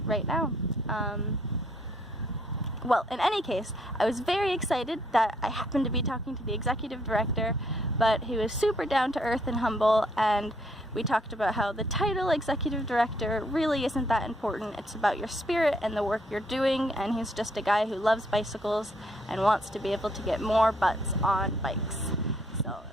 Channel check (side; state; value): both; normal; correlation 0.69